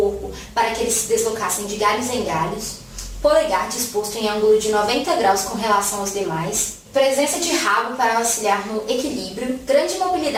para que eles se deslocassem de galhos em galhos, polegar disposto em ângulo de 90 graus com relação aos demais, presença de rabo para auxiliar no equilíbrio, grande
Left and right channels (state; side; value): identical; both; correlation 1.00